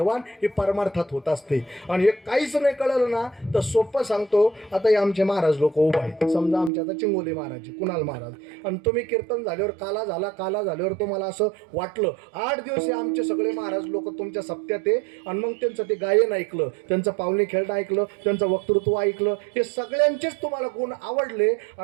ही परमार्थात होत असते. आणि हे काहीच नाही कळलं ना तर सोपं सांगतो. आता हे आमचे महाराज लोक उभा आहेत, समजा आमच्या आता चिंगोली महाराज, कुणाल महाराज, आणि तुम्ही कीर्तन झाल्यावर काला झाल्यावर तुम्हाला असं वाटलं 8 दिवस हे आमचे सगळे महाराज लोक तुमच्या सप्त्यात आहे, आणि मग त्यांचं ते गायन ऐकलं, त्यांचं पावणी खेळणं ऐकलं, त्यांचं वक्तृत्व ऐकलं, हे सगळ्यांचेच तुम्हाला गुण आवडले,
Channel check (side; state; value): left; drops out; at 6.7 s